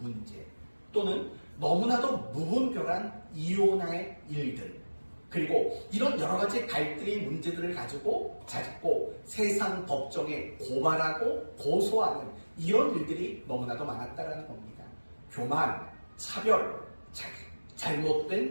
또는 너무나도 무분별한 이혼의 일들 그리고 이런 여러 가지 갈등의 문제들을 가지고 자꾸 세상 법정에 고발하고 고소하는 이런 일들이 너무나도 많았다는 겁니다. 교만, 차별,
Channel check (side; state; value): both; inverted; correlation -1.00